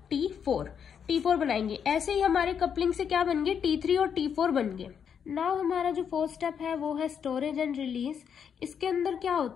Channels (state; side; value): quieter; right; 7.6 dB